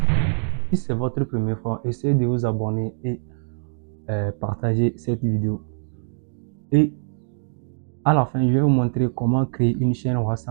Si c'est votre première fois, essayez de vous abonner et partager cette vidéo. Et à la fin, je vais vous montrer comment créer une chaîne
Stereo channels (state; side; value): silent; left; digital silence